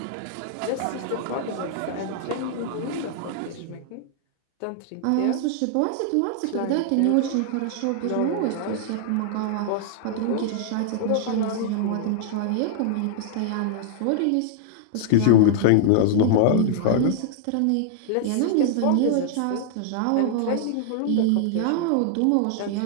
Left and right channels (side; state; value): both; different; correlation -0.01